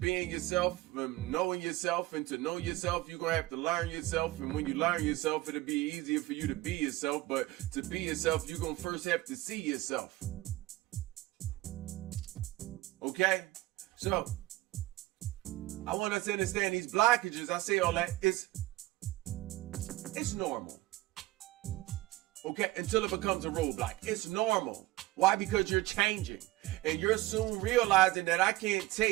yourself, knowing yourself, and to know yourself, you're going to have to learn yourself. And when you learn yourself, it'll be easier for you to be yourself. But to be yourself, you're going to first have to see yourself. Okay? So, I want us to understand these blockages. I say all that, it's normal. Okay? Until it becomes a roadblock. It's normal. Why? Because you're changing. And you're soon realizing that I can't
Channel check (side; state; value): left; quieter; 18.3 dB